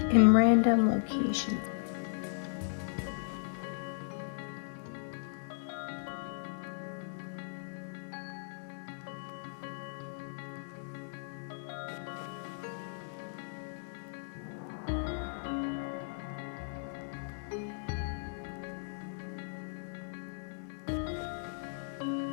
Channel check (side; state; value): right; silent; digital silence